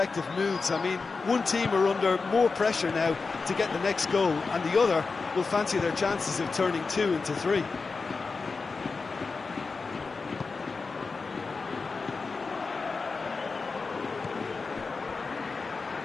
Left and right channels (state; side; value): quieter; right; 4.4 dB